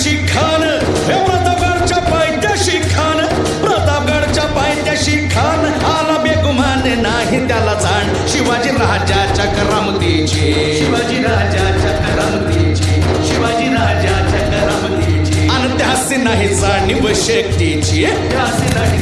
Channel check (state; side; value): noise; right; hum, 22 dB below the sound